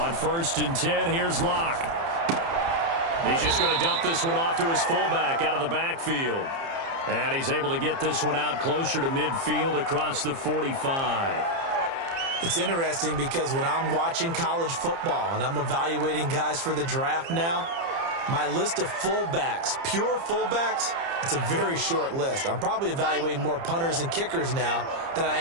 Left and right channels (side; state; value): left; late; 30 ms